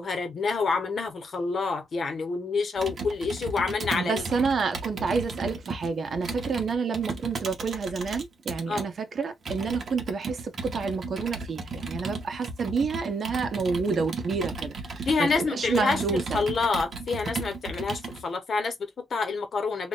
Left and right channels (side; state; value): both; normal; correlation 0.76